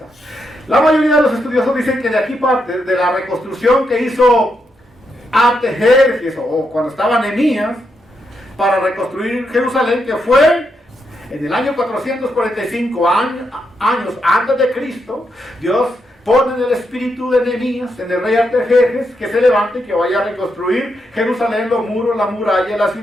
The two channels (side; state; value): both; normal; correlation 0.82